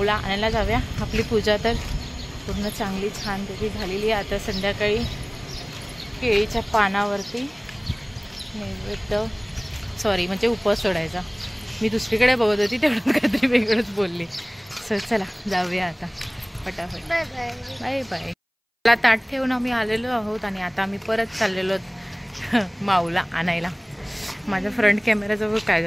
आणायला जाऊया. आपली पूजा तर पूर्ण चांगली छानपैकी झालेली आहे. आता संध्याकाळी केळीच्या पानावरती नैवेद्य म्हणजे उपवास सोडायचा. मी दुसरीकडे बघत होती तेवढं काहीतरी वेगळंच बोलली. सो चला जाऊया आता फटाफट. Bye bye bye bye. मला ताट ठेवून आम्ही आलेलो आहोत आणि आता आम्ही परत चाललेलो माऊला आणायला. माझ्या फ्रंट कॅमेराजवळ काय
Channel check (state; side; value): identical; both; correlation 1.00